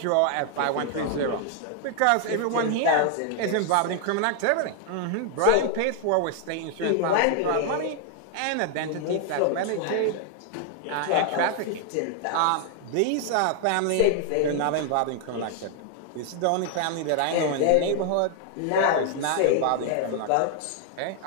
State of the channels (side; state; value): both; different; correlation 0.00